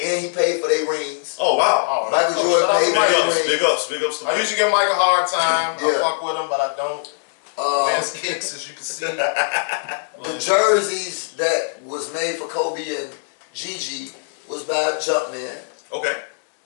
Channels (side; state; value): right; silent; digital silence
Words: and he paid for their rings. Oh wow! Michael Jordan paid for their rings. Big ups. I usually give Mike a hard time. I fuck with him, but I don't. Man's kicks, as you can see. The jerseys that was made for Kobe and Gigi was by Jumpman. Okay.